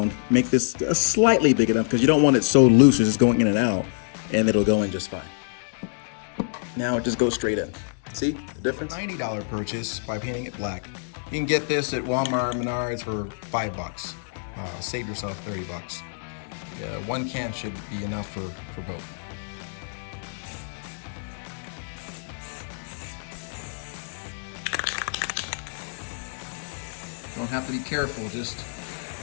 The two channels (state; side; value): silent; right; digital silence